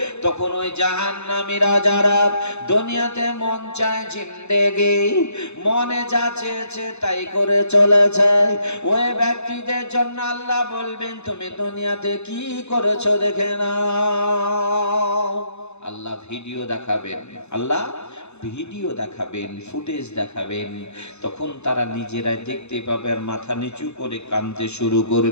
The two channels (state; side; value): late; right; 0.81 ms